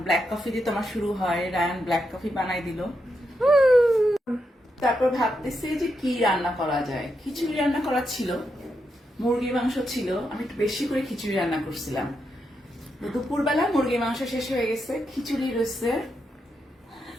ব্ল্যাক কফি দিয়ে তোমার শুরু হয়, রায়ান ব্ল্যাক কফি বানাই দিল। তারপর ভাবতেছি যে কি রান্না করা যায়। খিচুড়ি রান্না করা ছিল, মুরগির মাংস ছিল, আমি একটু বেশি করে খিচুড়ি রান্না করছিলাম। দুপুরবেলা মুরগির মাংস শেষ হয়ে গেছে, খিচুড়ি রয়েছে।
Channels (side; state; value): both; normal; correlation 0.83